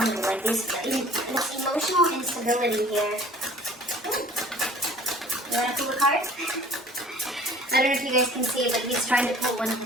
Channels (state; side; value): normal; both; correlation 0.49